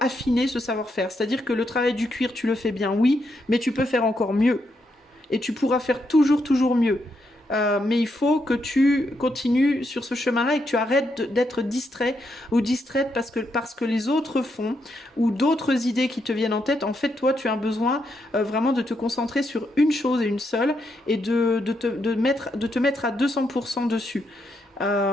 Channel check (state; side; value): normal; both; correlation 0.80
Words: affiner ce savoir-faire. C'est-à-dire que le travail du cuir, tu le fais bien, oui, mais tu peux faire encore mieux. Et tu pourras faire toujours mieux. Mais il faut que tu continues sur ce chemin-là et que tu arrêtes d'être distrait ou distraite parce que les autres font ou d'autres idées qui te viennent en tête. En fait, toi, tu as besoin vraiment de te concentrer sur une chose et une seule et de te mettre à 200% dessus.